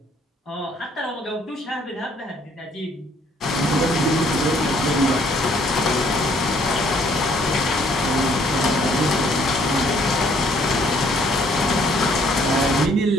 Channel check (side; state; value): both; normal; correlation 0.64